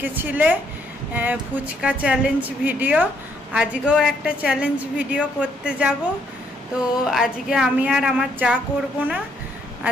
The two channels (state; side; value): normal; both; correlation 0.71